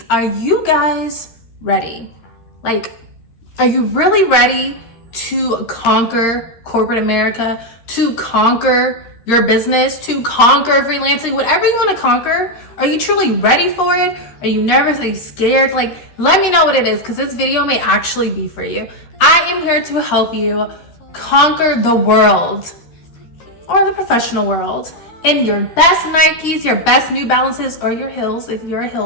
Are you guys ready? Are you really ready to conquer corporate America, to conquer your business, to conquer freelancing, whatever you want to conquer? Are you truly ready for it? Are you nervous? Are you scared? Let me know what it is, because this video may actually be for you. I am here to help you conquer the world, or the professional world, in your best Nikes, your best New Balances, or your heels if you're a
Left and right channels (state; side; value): late; right; 13 ms